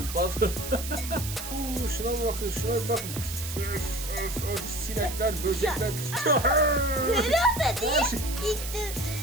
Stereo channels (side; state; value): right; noise; hiss, 8 dB below the sound